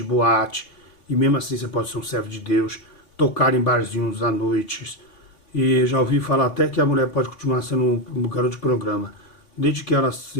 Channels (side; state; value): right; late; 3.5 ms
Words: boate, e mesmo assim você pode ser um servo de Deus, tocar em barzinhos à noite. E já ouvi falar até que a mulher pode continuar sendo um garoto de programa, desde que ela